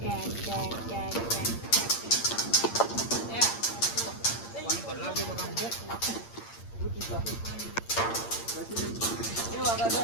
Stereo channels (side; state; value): right; late; 8.7 ms